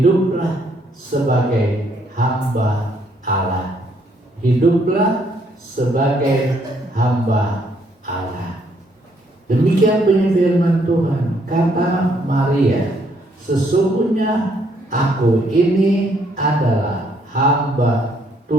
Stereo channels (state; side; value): normal; both; correlation 0.69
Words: sebagai hamba Allah. Hiduplah sebagai hamba Allah. Demikian bunyi firman Tuhan. Kata Maria, sesungguhnya aku ini adalah hamba